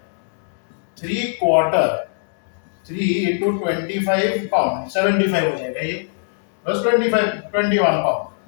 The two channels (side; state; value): right; silent; digital silence